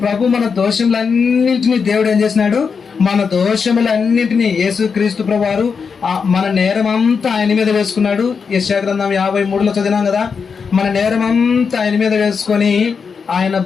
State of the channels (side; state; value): right; quieter; 5.7 dB